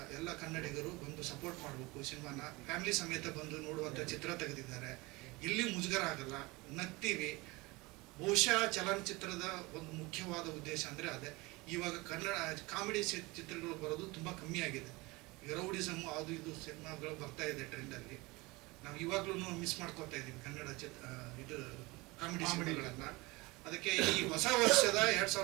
ಎಲ್ಲ ಕನ್ನಡಿಗರು ಬಂದು ಸಪೋರ್ಟ್ ಮಾಡಬೇಕು. ಸಿನಿಮಾನ ಫ್ಯಾಮಿಲಿ ಸಮೇತ ಬಂದು ನೋಡುವಂತ ಚಿತ್ರ ತೆಗೆದಿದ್ದಾರೆ. ಎಲ್ಲಿ ಮುಜುಗರ ಆಗಲ್ಲ, ನಗ್ತೀವಿ. ಬಹುಶಃ ಚಲನಚಿತ್ರದ ಒಂದು ಮುಖ್ಯವಾದ ಉದ್ದೇಶ ಅಂದ್ರೆ ಅದೇ. ಇವಾಗ ಕನ್ನಡ ಕಾಮಿಡಿ ಚಿತ್ರಗಳು ಬರೋದು ತುಂಬಾ ಕಮ್ಮಿ ಆಗಿದೆ. ಈಗ ರೌಡಿಸಮ್ ಅದು ಇದು ಸಿನಿಮಾಗಳು ಬರ್ತಾ ಇದೆ ಟ್ರೆಂಡ್ ಅಲ್ಲಿ. ನಾವು ಇವಾಗ್ಲೂ ಮಿಸ್ ಮಾಡ್ಕೊತಾ ಇದೀವಿ ಕನ್ನಡ ಇದು ಕಾಮಿಡಿ ಸಿನಿಮಾಗಳನ್ನ. ಅದಕ್ಕೆ ಈ ಹೊಸ ವರ್ಷದ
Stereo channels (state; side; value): quieter; left; 23.4 dB